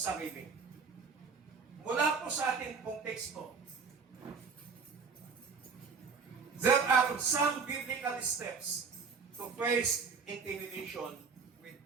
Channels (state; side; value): quieter; left; 5.3 dB